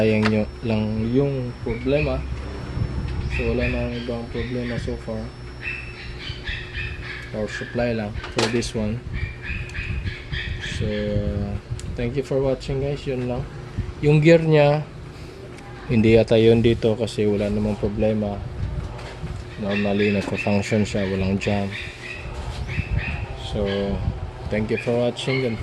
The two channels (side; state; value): both; identical; correlation 1.00